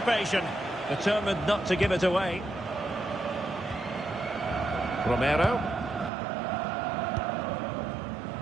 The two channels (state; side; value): drops out; left; at 6.1 s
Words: Determined not to give it away. Romero.